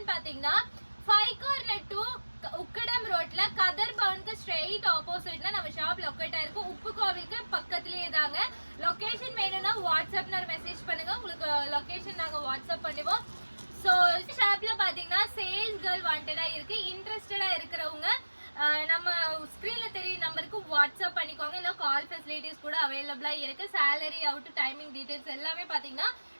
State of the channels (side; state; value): both; inverted; correlation -1.00